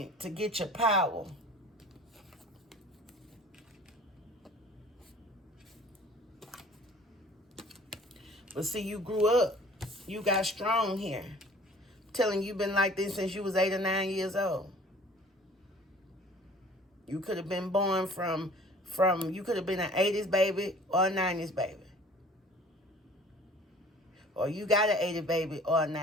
to get your power. But see, you grew up. You got strong here. I'm telling you, you've been like this since you was 8 or 9 years old. You could have been born from you could have been an 80s baby or a 90s baby. Or you got an 80s baby or a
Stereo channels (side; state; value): both; normal; correlation 0.50